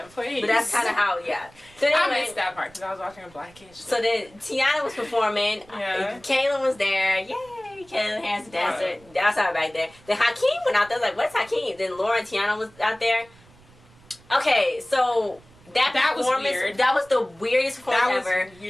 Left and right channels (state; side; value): noise; right; rumble, 26 dB below the sound